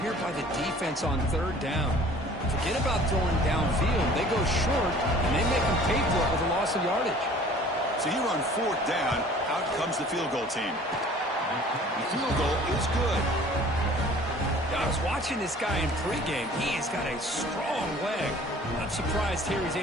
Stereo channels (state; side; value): normal; both; correlation 0.50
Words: here by the defense on third down. Forget about throwing downfield. They go short, and they make them pay for it with a loss of yardage. So here on fourth down, out comes the field goal team. The field goal is good. I was watching this guy in pregame. He has got a strong leg. I'm surprised here he's